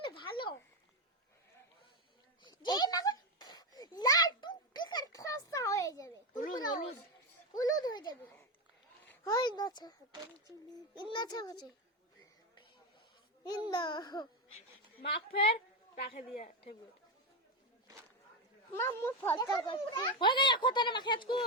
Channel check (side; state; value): both; normal; correlation 0.10